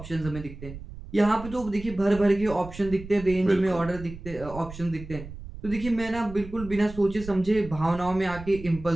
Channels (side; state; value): right; noise; rumble, 13 dB below the sound